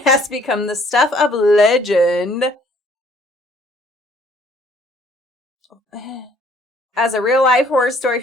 has become the stuff of legend as a real-life horror story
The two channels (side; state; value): both; normal; correlation 0.60